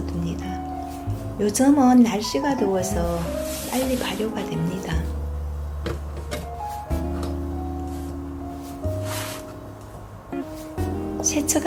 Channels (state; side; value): identical; both; correlation 1.00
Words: 요즘은 날씨가 더워서 빨리 발효가 됩니다.